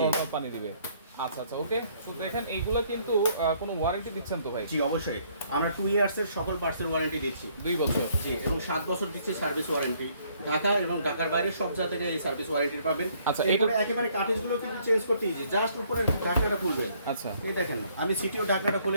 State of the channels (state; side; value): inverted; both; correlation -0.65